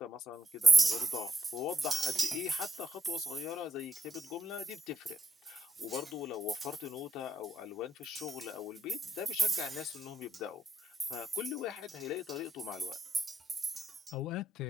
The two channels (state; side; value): normal; both; correlation 0.80